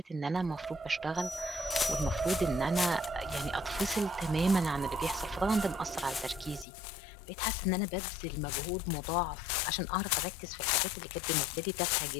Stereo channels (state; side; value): drops out; right; at 6.7 s